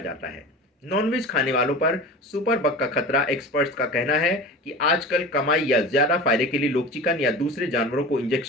है। नॉनवेज खाने वालों पर सुपर बग का खतरा, एक्सपर्ट्स का कहना है कि आजकल कमाई या ज्यादा फायदे के लिए लोग चिकन या दूसरे जानवरों को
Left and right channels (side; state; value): both; normal; correlation 0.33